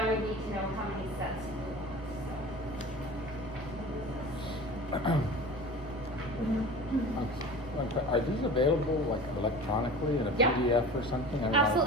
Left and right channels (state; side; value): normal; both; correlation 0.36